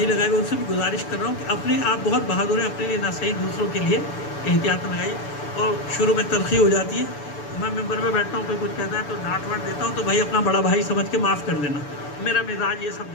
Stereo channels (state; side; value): late; right; 6.9 ms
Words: لگائے ہوئے ان سے بھی گزارش کر رہا ہوں کہ اپنے آپ بہت بہادر ہیں، اپنے لیے نہ صحیح دوسروں کے لیے احتیاط لگائی۔ اور شروع میں تلخی ہو جاتی ہے، میں ممبر میں بیٹھتا ہوں کوئی کچھ کہتا ہے تو ڈانٹ واٹ دیتا ہوں، تو بھائی اپنا بڑا بھائی سمجھ کے معاف کر دینا، میرا مزاج یہ سب